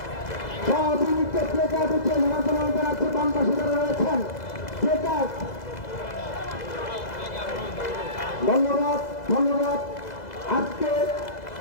সব ইউনিটে প্লেকার্ড উঠে জনগণ জানাচ্ছে বাম পাশে যারা রয়েছেন প্লেকার্ড। ধন্যবাদ ধন্যবাদ। আজকে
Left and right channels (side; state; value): right; late; 2.0 ms